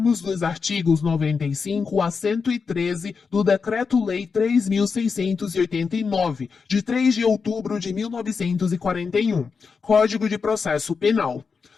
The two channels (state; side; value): quieter; right; 5.3 dB